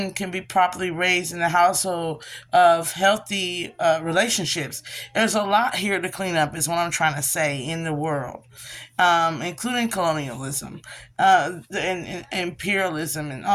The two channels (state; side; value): identical; both; correlation 1.00